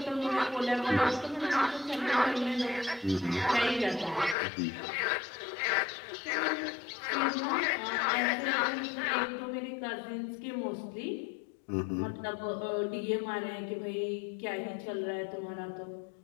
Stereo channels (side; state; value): right; drops out; at 4.4 s